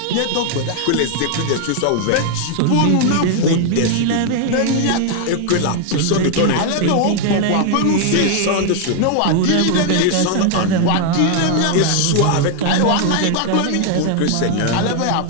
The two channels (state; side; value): different; both; correlation 0.00